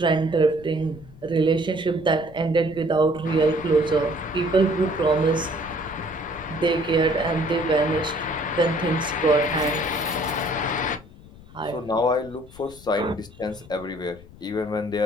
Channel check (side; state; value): left; noise; rumble, 21 dB below the sound